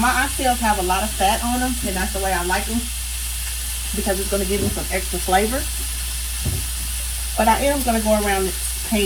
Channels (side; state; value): both; identical; correlation 1.00